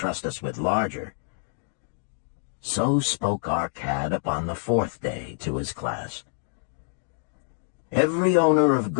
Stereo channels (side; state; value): right; silent; digital silence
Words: us with larger. So spoke our cad upon the fourth day to his class. Every owner of